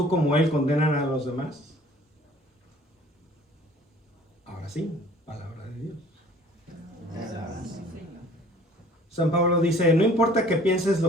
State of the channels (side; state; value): both; normal; correlation 0.52